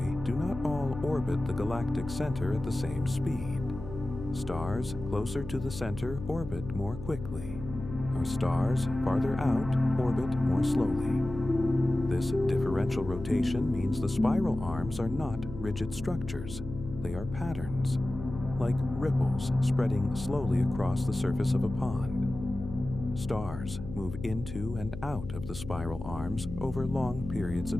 do not all orbit the galactic center at the same speed. Stars closer to the center orbit more quickly, while stars farther out orbit more slowly. This differential rotation means the spiral arms are not rigid structures, they are patterns, like ripples spreading slowly across the surface of a pond. Stars move into and out of the spiral arms over long periods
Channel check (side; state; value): left; noise; hum, 10 dB below the sound